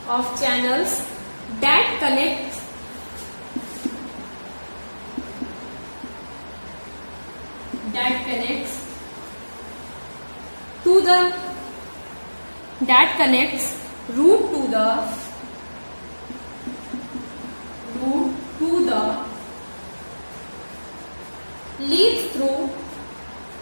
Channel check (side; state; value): both; inverted; correlation -1.00